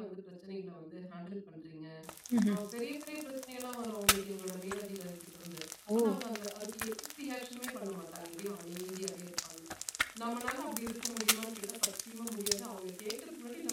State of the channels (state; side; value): identical; both; correlation 1.00